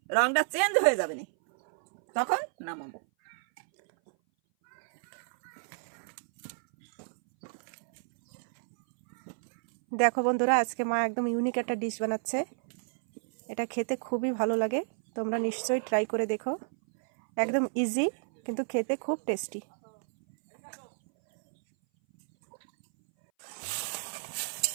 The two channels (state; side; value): silent; left; 58 dB below the other